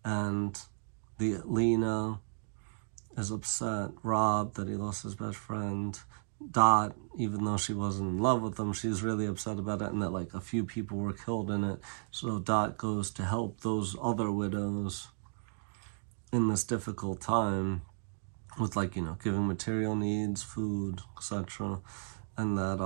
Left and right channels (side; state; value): left; silent; digital silence